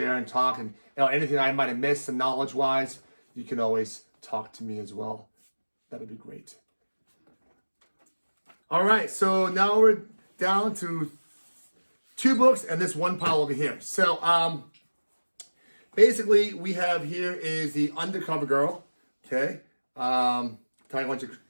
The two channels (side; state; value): both; inverted; correlation -1.00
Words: and talk. And anything I might have missed knowledge-wise, you can always talk to me as well. That'd be great. All right, so now we're down to 2 books and this one pile over here. So basically, we have here is the Undercover Girl. Okay. Ty, why don't you